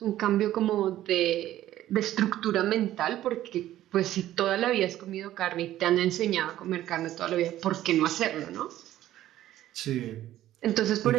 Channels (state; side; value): quieter; left; 13.5 dB